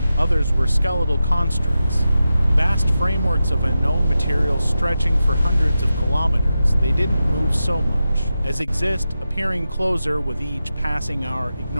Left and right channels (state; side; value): inverted; both; correlation -0.91